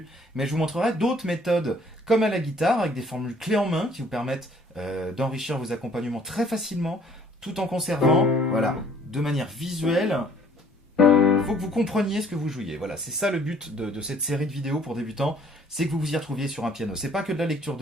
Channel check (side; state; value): both; normal; correlation 0.57